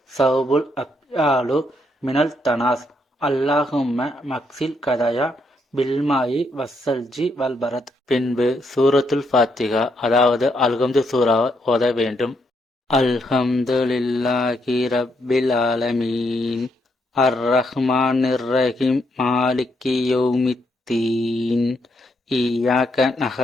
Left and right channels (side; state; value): both; normal; correlation 0.76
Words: சௌபுல் அப்யாலு மினல் தனாஸ். அல்லாஹும்ம மக்சில் கதாயா பில்மாயி வஸ்ஸல்ஜி வல்பரத். பின்பு சூரத்துல் ஃபாத்திஹா அதாவது அல்ஹம்து சூரா ஓத வேண்டும். அல்ஹம்துலில்லாஹி ரப்பில் ஆலமீன் அர்ரஹ்மானிர் ரஹீம் மாலிகி யௌமித்தீன் இய்யாக